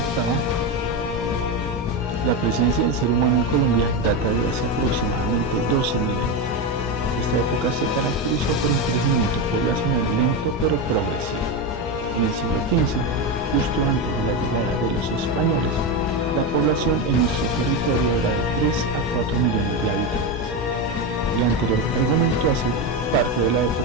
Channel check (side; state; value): both; normal; correlation 0.14